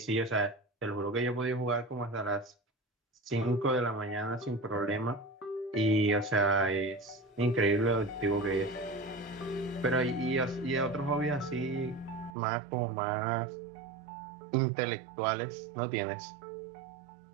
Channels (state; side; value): drops out; left; at 12.4 s